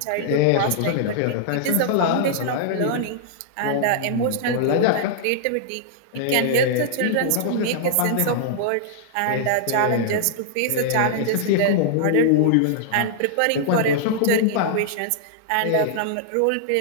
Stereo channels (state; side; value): different; both; correlation -0.01